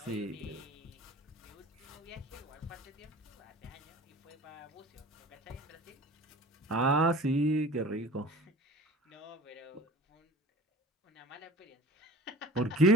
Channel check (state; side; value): normal; both; correlation 0.42